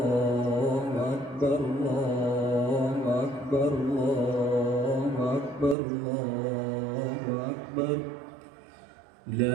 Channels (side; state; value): left; drops out; at 5.8 s